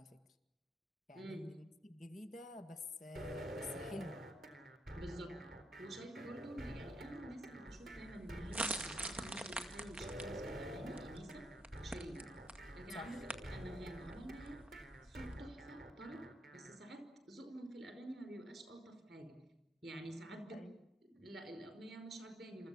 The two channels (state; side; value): normal; both; correlation 0.76